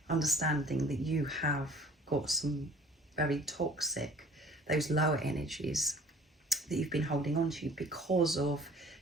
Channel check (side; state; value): both; normal; correlation 0.49